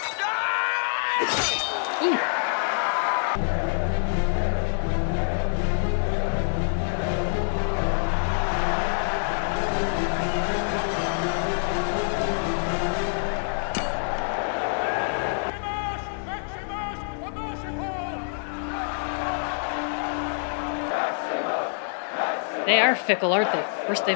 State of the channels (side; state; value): right; silent; digital silence